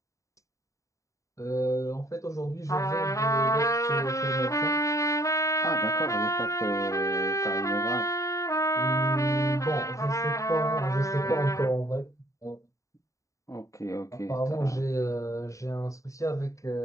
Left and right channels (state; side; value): late; right; 0.16 ms